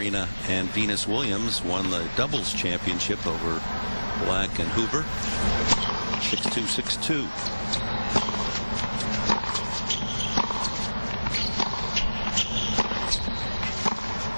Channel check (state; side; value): inverted; both; correlation -1.00